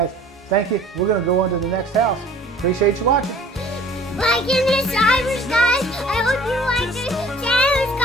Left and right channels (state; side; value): normal; both; correlation 0.50